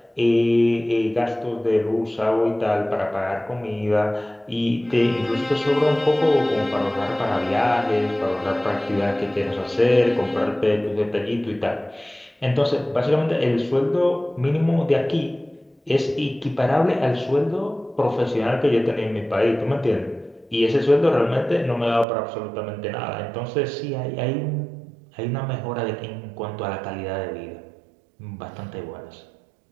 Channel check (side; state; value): left; drops out; at 22.1 s